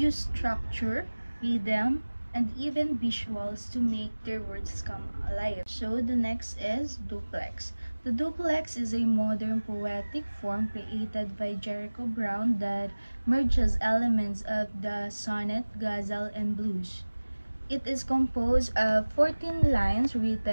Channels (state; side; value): inverted; both; correlation -1.00